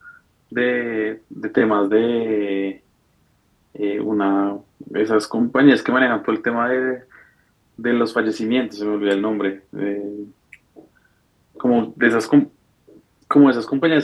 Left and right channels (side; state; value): both; identical; correlation 1.00